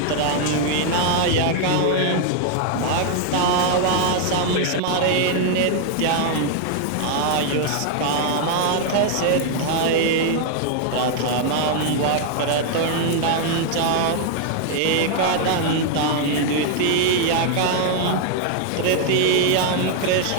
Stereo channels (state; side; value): different; both; correlation 0.00